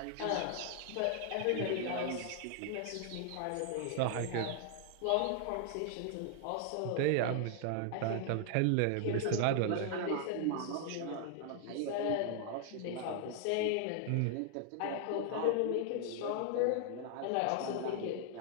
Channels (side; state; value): both; different; correlation 0.00